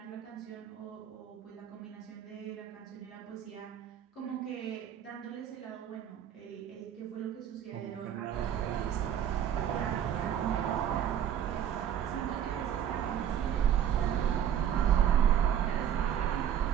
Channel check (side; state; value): left; quieter; 9.8 dB